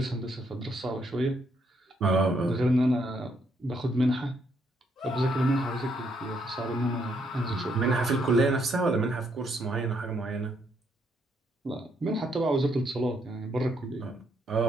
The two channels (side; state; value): both; normal; correlation 0.74